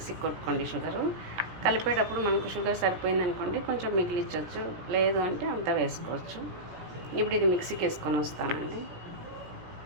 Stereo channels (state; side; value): late; left; 17 ms